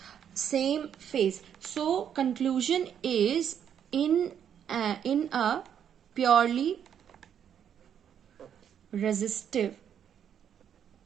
same phase. So conclusion is, in a purely resistive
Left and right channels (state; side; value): quieter; left; 8.8 dB